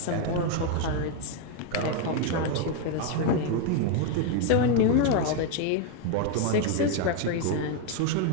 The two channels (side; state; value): both; different; correlation 0.01